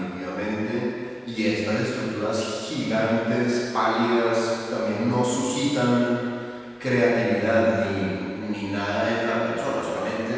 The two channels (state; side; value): identical; both; correlation 1.00